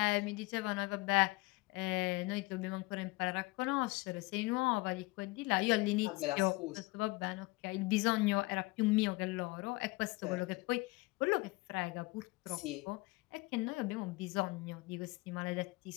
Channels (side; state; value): right; quieter; 23.4 dB